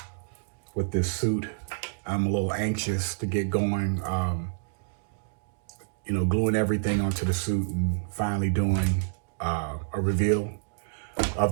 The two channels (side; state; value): left; silent; digital silence